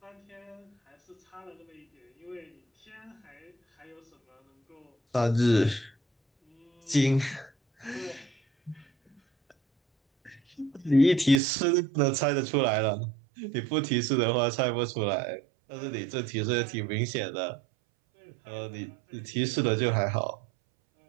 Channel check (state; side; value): drops out; left; at 11.4 s